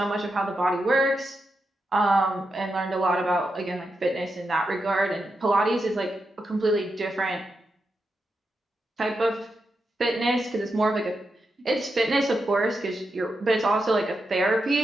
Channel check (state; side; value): normal; both; correlation 0.86